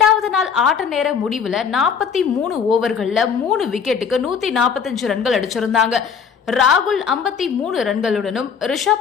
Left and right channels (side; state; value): right; quieter; 6.7 dB